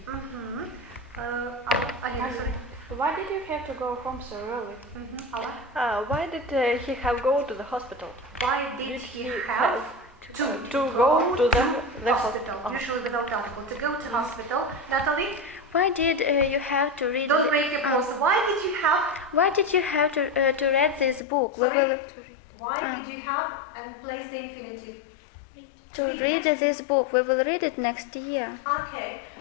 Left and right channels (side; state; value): right; drops out; at 21.2 s